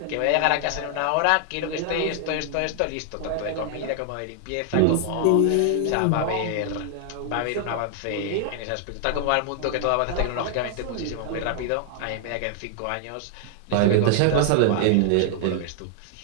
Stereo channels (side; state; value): both; different; correlation 0.00